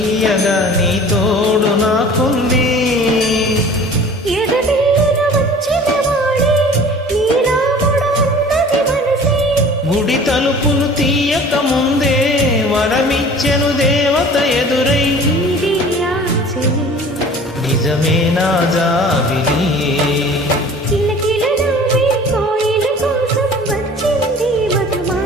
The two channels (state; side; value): normal; both; correlation 0.45